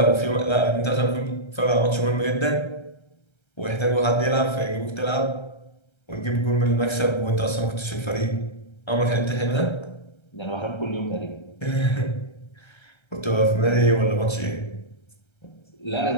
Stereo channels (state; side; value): late; right; 1.3 ms